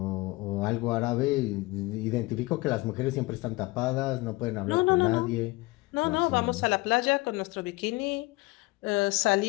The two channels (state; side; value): quieter; right; 22.2 dB